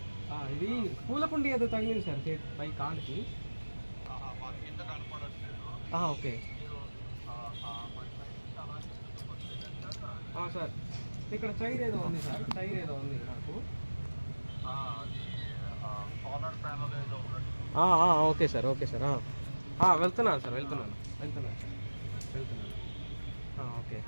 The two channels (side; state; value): both; inverted; correlation -1.00